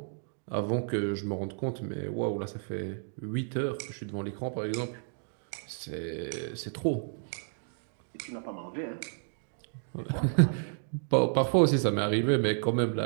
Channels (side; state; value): left; silent; digital silence